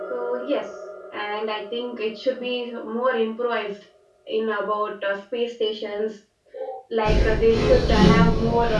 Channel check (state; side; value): identical; both; correlation 1.00